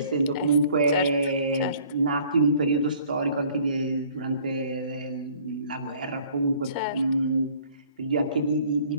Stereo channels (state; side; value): inverted; both; correlation -0.56